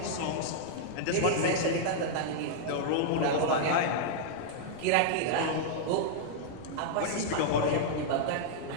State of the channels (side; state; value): both; different; correlation -0.01